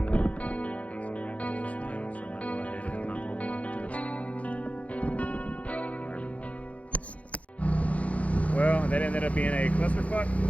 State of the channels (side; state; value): right; late; 0.066 ms